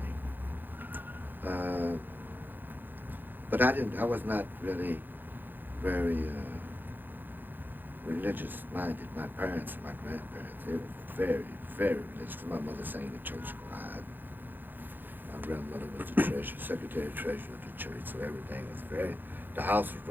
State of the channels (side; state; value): left; late; 0.090 ms